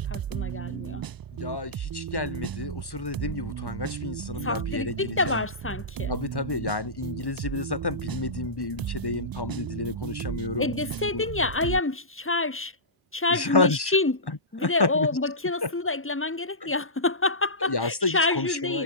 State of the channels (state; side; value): normal; both; correlation -0.19